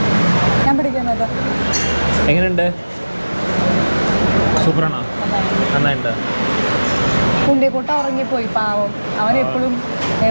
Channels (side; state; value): both; inverted; correlation -1.00